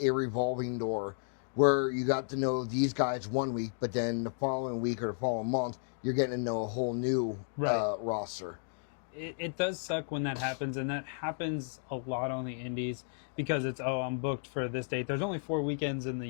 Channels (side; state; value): right; silent; digital silence